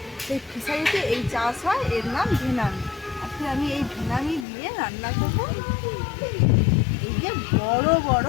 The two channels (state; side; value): drops out; right; at 4.5 s